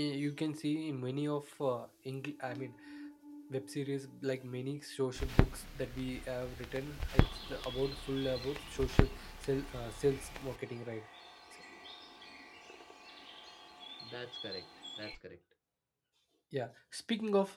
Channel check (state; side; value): identical; both; correlation 1.00